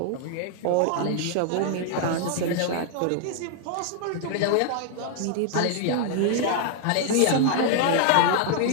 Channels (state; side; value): different; both; correlation 0.00